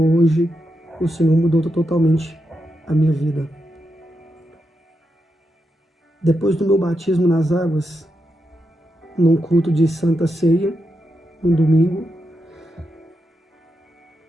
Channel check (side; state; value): both; normal; correlation 0.85